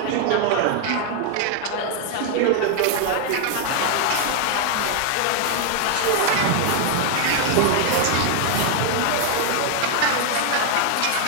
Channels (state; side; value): different; both; correlation 0.00